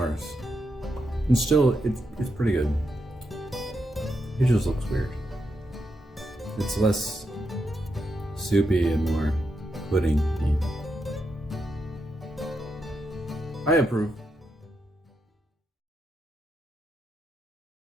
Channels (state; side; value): normal; both; correlation 0.83